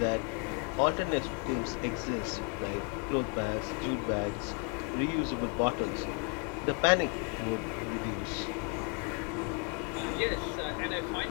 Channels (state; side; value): quieter; right; 34.7 dB